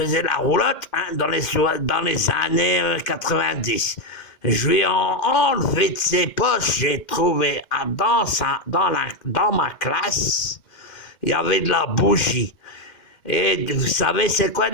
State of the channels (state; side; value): late; right; 2.1 ms